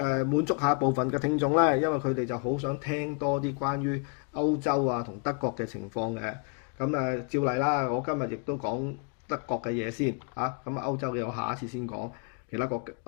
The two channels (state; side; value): quieter; right; 36.1 dB